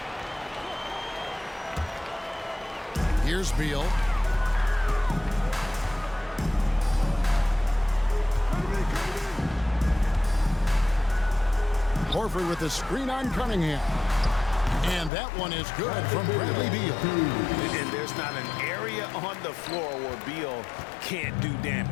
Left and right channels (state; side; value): drops out; right; at 15.1 s